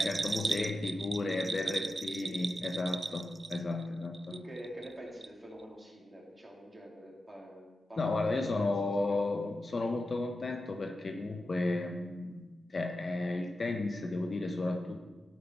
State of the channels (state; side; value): normal; both; correlation 0.91